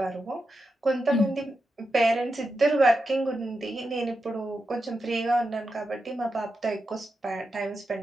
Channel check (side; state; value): both; normal; correlation 0.88